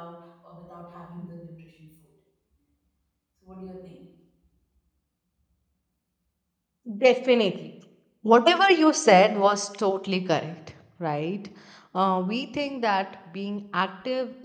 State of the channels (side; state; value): both; identical; correlation 1.00